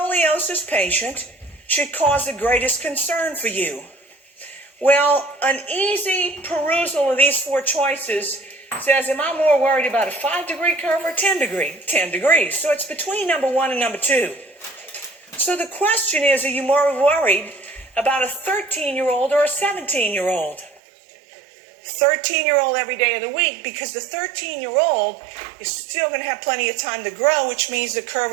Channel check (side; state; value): left; drops out; at 20.8 s